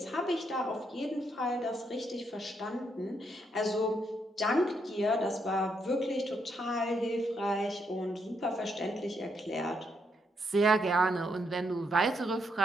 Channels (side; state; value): both; normal; correlation 0.77